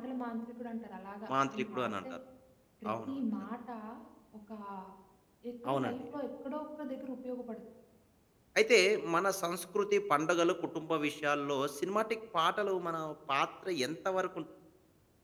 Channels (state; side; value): identical; both; correlation 1.00